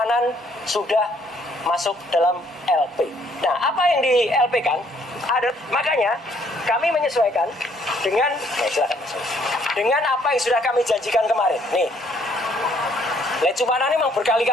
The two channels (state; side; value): normal; both; correlation 0.65